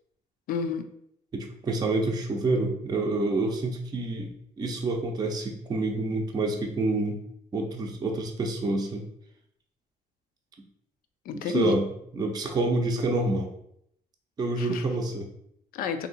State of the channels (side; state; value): both; normal; correlation 0.58